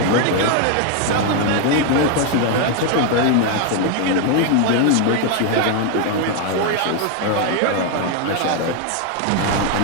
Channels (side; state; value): both; different; correlation 0.01